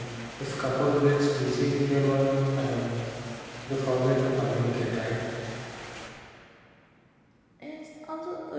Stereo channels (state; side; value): identical; both; correlation 1.00